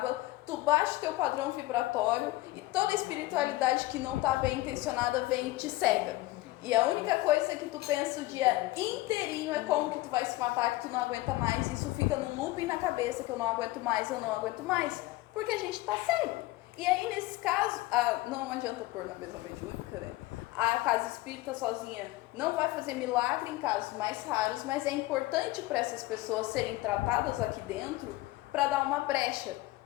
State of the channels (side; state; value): right; quieter; 18.6 dB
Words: Tu baixa o teu padrão vibratório e toda a espiritualidade que não tá bem intencionada vem e te cega. E a única coisa que tu pensa o dia inteirinho é como que tu vai se matar, que tu não aguenta mais. Isso fica num looping na cabeça, que eu não aguento mais, eu não aguento mais. Porque a gente tá cego. E aí, nesse caso, não adianta pôr na mesa mediúnica, né? A casa espírita sozinha não vai fazer milagre em casos mais raros, mas é importante para essas pessoas serem tratadas aqui dentro para dar uma brecha.